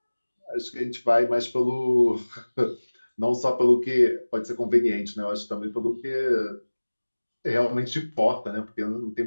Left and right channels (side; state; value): both; inverted; correlation -1.00